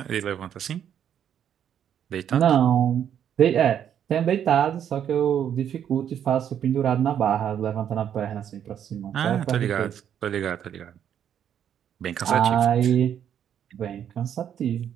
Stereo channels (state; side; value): quieter; left; 9.3 dB